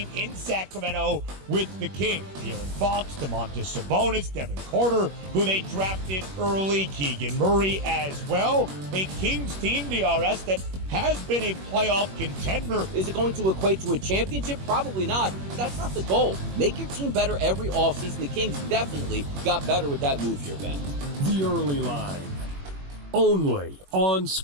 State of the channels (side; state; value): left; late; 21 ms